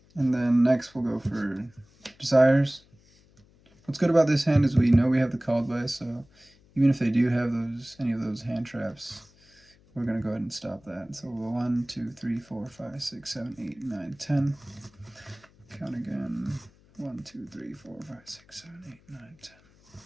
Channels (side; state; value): left; noise; hum, 29 dB below the sound